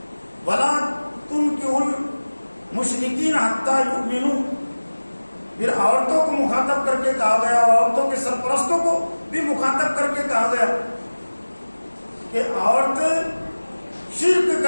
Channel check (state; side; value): inverted; both; correlation -1.00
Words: ولا تنکحوا المشرکین حتی یؤمنوا، پھر عورتوں کو مخاطب کر کے کہا گیا، عورتوں کے سرپرستوں کو بھی مخاطب کر کے کہا گیا کہ عورت شرک